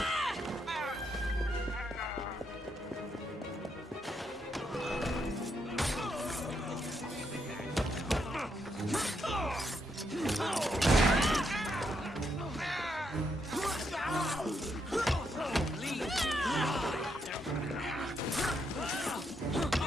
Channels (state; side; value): normal; both; correlation 0.79